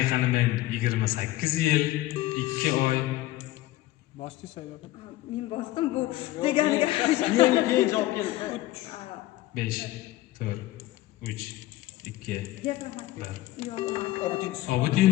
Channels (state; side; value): quieter; right; 16.4 dB